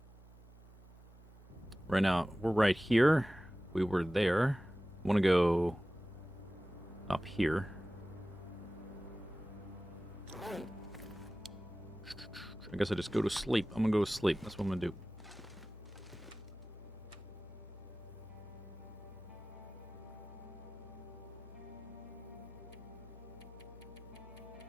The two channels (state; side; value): noise; left; hum, 20 dB below the sound